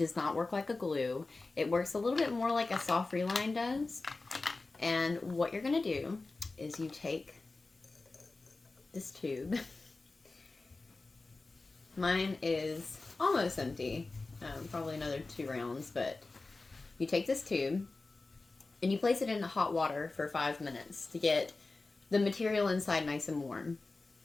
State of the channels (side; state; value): right; quieter; 3.5 dB